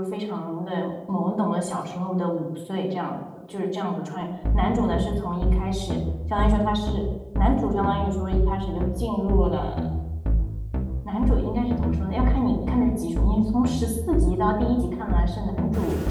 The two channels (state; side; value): identical; both; correlation 1.00